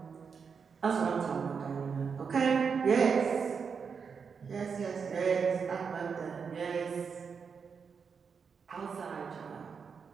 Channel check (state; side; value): quieter; left; 6.0 dB